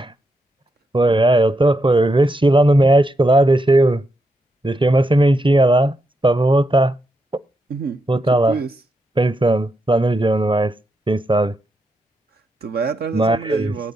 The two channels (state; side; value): normal; both; correlation 0.82